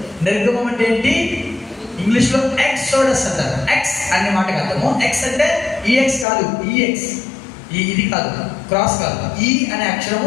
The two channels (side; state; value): right; drops out; at 6.2 s